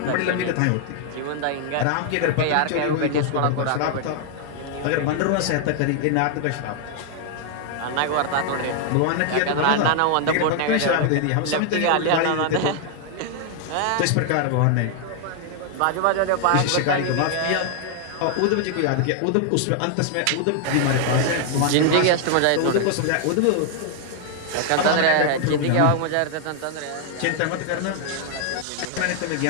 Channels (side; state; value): both; different; correlation 0.00